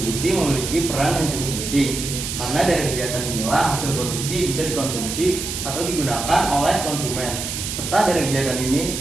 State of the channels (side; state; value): right; noise; hiss, 5 dB below the sound